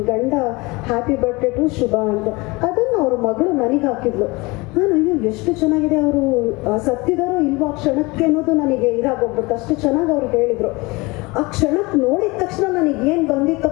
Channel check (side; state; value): right; quieter; 24.4 dB